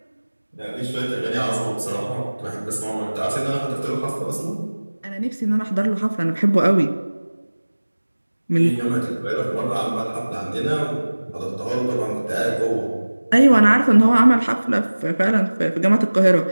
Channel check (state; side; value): inverted; both; correlation -1.00